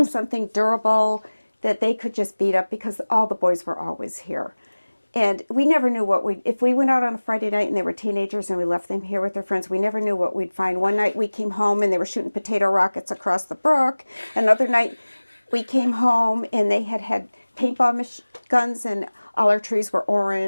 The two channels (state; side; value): inverted; both; correlation -1.00